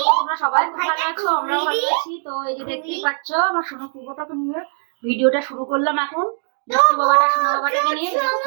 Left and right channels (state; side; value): silent; left; 59 dB below the other